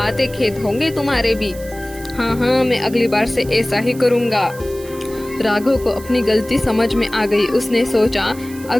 खेत होंगे तुम्हारे भी। हाँ हाँ, मैं अगली बार से ऐसा ही करूँगा। राघव को अपनी गलती समझ में आ गई। उसने सोचा,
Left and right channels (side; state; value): right; noise; hiss, 18 dB below the sound